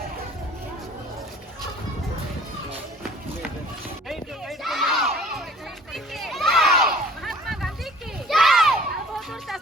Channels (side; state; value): both; normal; correlation 0.50